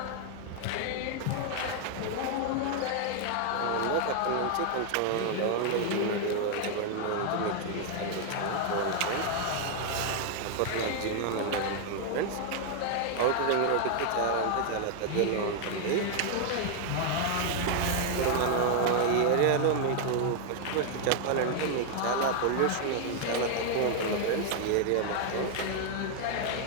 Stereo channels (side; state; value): both; different; correlation 0.00